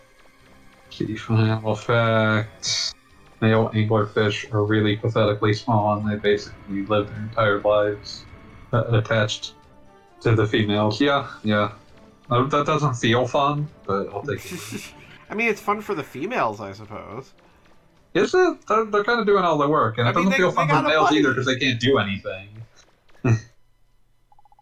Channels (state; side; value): identical; both; correlation 1.00